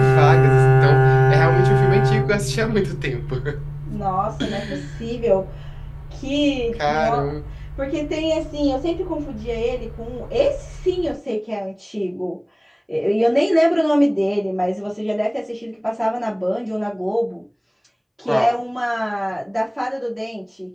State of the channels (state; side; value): identical; both; correlation 1.00